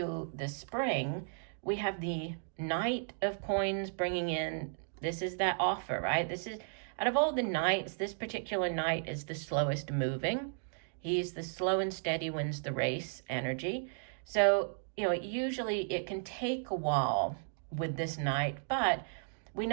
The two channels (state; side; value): silent; left; digital silence